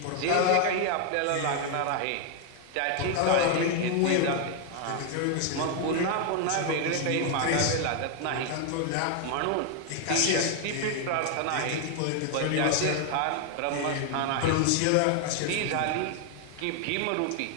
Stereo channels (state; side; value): different; both; correlation 0.00